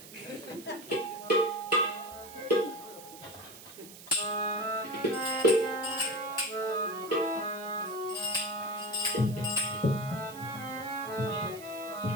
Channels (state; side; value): noise; right; hiss, 16 dB below the sound